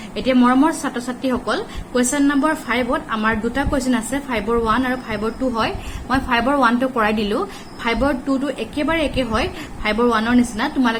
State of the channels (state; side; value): identical; both; correlation 1.00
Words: এতিয়া মৰমৰ ছাত্ৰ ছাত্ৰী সকল কোৱেশ্চন নম্বৰ 5 ত আমাৰ দুটা কোৱেশ্চন আছে 5 ৰ 1 আৰু 5 ৰ 2 হয়। মই 5 ৰ 1 টো কৰাই দিলো 5 ৰ 2 টো একেবাৰে একে হয় 5 ৰ 1 ৰ নিচিনা